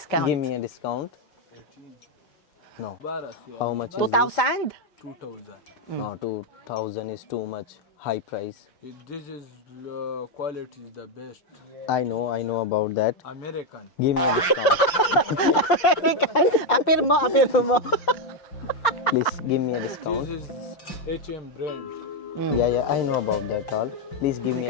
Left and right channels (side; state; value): right; late; 5.8 ms